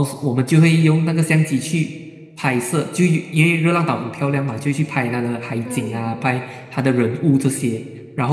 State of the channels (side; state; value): both; identical; correlation 1.00